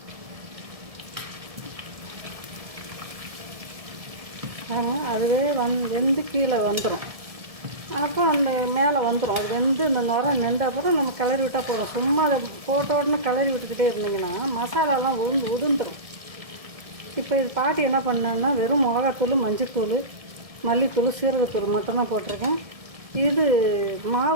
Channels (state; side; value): late; left; 1.7 ms